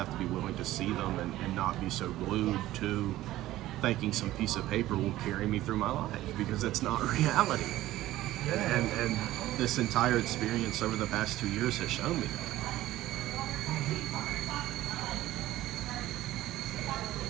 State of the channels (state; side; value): quieter; left; 15.5 dB